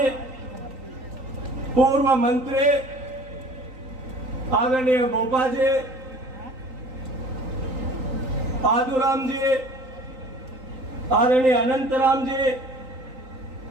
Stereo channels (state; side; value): late; left; 3.9 ms